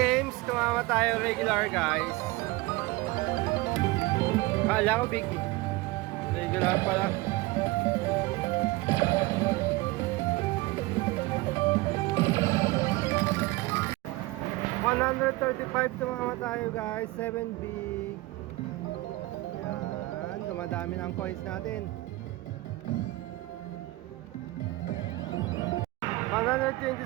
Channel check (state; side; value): quieter; left; 20.7 dB